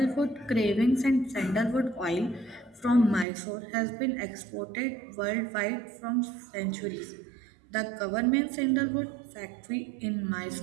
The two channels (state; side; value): drops out; left; at 3.2 s